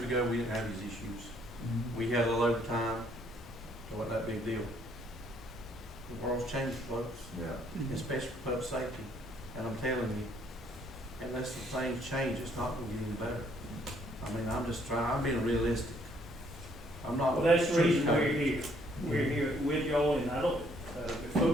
ago, we didn't have these issues. We had a little overtime, it wasn't that big deal. The world's changed, folks, Yeah. especially for public safety. And I'm telling you, unless the things change, it's not going to get any better. I'm being realistic. I'm not. Well, that's the reason we're here. We're here with y'all, and I don't, the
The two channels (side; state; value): both; normal; correlation 0.66